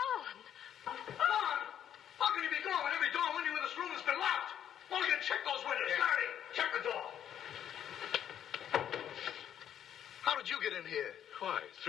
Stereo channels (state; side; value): quieter; right; 9.9 dB